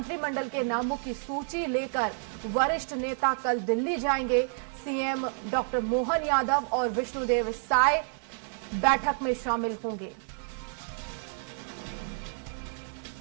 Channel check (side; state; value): left; silent; 58 dB below the other